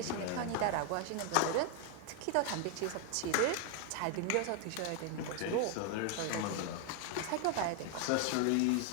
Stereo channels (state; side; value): different; both; correlation 0.01